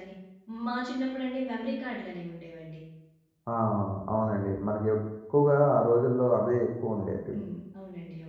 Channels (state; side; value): identical; both; correlation 1.00